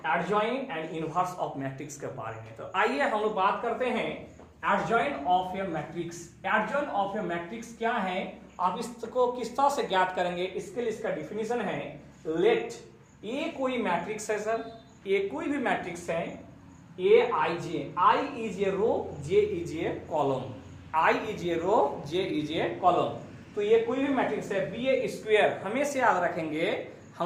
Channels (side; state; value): both; identical; correlation 1.00